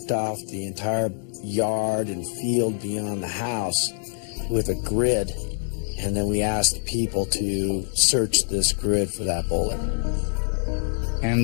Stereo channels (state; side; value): silent; right; digital silence